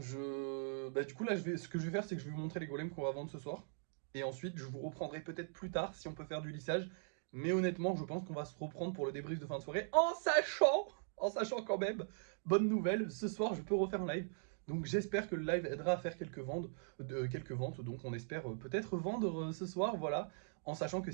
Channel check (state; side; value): silent; left; digital silence